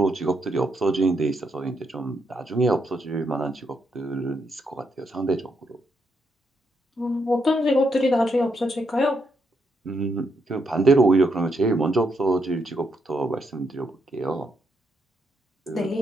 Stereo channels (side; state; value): both; normal; correlation 0.78